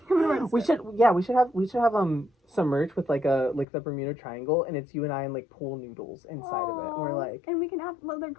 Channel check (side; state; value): right; drops out; at 3.7 s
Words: gonna write a we script. should have some merch with like the Bermuda Triangle, and it's you and I and like pool noodles inside of it. And we're like, and we can have little